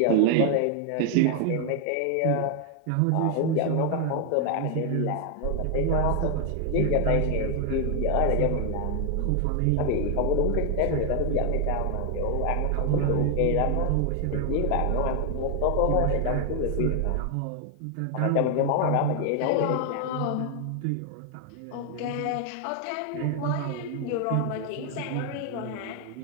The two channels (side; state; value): both; different; correlation 0.00